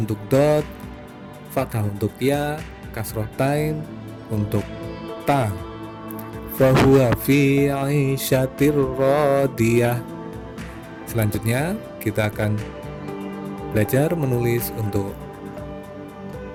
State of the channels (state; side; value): identical; both; correlation 1.00